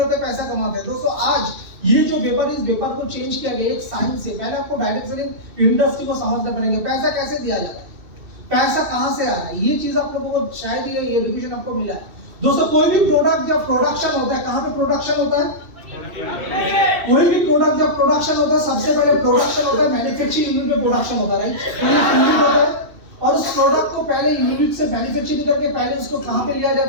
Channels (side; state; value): left; late; 2.7 ms